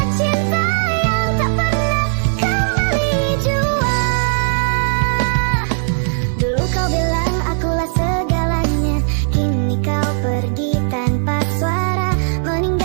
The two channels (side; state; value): left; silent; 60 dB below the other